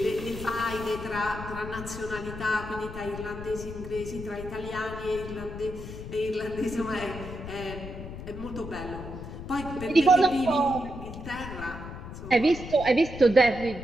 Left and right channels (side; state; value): left; noise; rumble, 10 dB below the sound